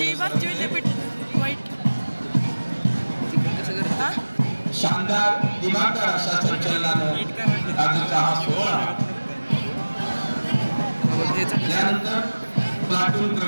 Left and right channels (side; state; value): both; inverted; correlation -1.00